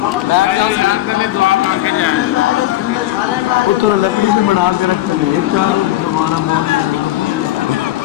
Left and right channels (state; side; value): quieter; right; 14.9 dB